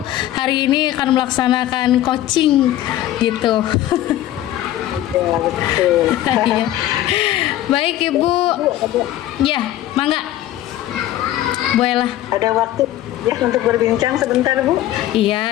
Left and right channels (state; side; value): quieter; right; 13.5 dB